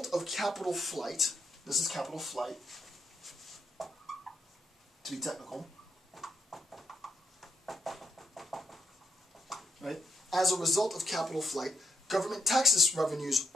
of capital flight, this is capital flight, to be technical, right? As a result of capital flight, government taxes revenues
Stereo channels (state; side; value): normal; both; correlation 0.78